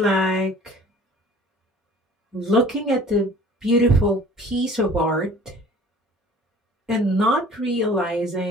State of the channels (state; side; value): normal; both; correlation 0.48